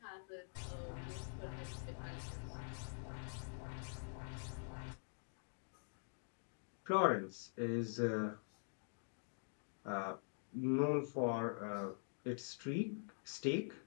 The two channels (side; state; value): right; silent; digital silence